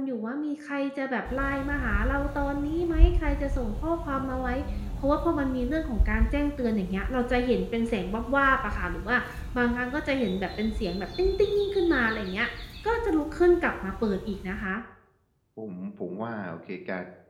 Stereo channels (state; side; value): identical; both; correlation 1.00